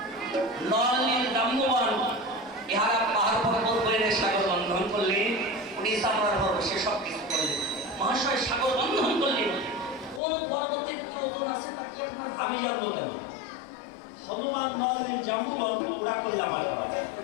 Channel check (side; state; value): right; drops out; at 10.2 s